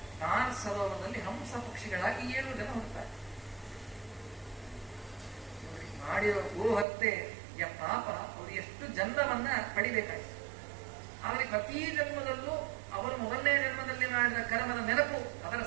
ನಾನ್ ಸರೋವರದಲ್ಲಿ ಹಂಸ ಪಕ್ಷಿಗಳಾಗಿ 7 ಜನ ಹುಟ್ಟುತ್ತಾರೆ. ಮಾಡಿರೋ ಗೋಹತ್ಯೆಯ ಪಾಪ ಅವರು ಎಷ್ಟು ಜನ್ಮವನ್ನ ಪಡಿಬೇಕಾಯ್ತು. ಆದರೆ ಪ್ರತಿ ಜನ್ಮದಲ್ಲೂ ಅವರು 1ನೇ ಜನ್ಮದಲ್ಲಿ ಮಾಡಿದ ಕರ್ಮದ ನೆನಪು, ಅದರ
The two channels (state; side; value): drops out; left; at 6.9 s